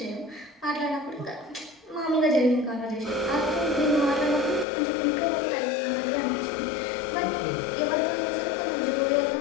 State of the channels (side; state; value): right; drops out; at 4.7 s